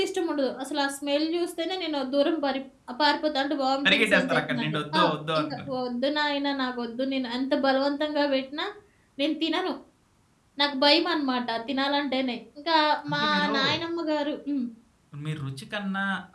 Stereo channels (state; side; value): identical; both; correlation 1.00